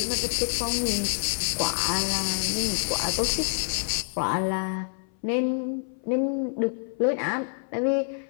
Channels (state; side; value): silent; right; 58 dB below the other